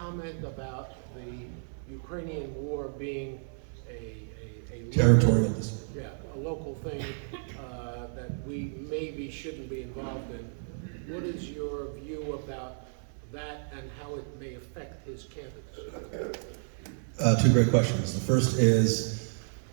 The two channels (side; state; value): left; silent; 57 dB below the other